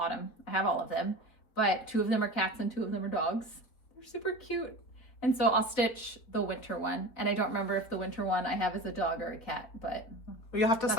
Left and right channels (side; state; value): right; late; 4.1 ms